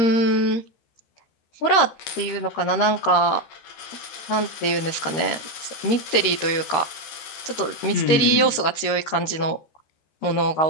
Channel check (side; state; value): right; late; 13 ms